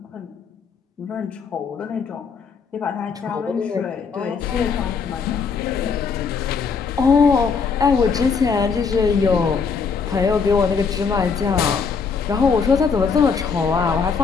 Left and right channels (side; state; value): right; quieter; 5.5 dB